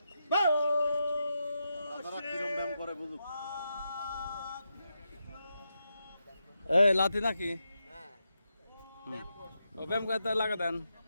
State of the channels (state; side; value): inverted; both; correlation -0.86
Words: এই লাথি নাকি? ও ব্যায়াম করতে লাগা দেন।